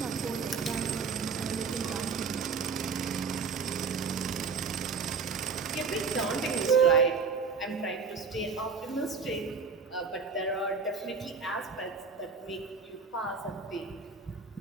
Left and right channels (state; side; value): quieter; left; 5.1 dB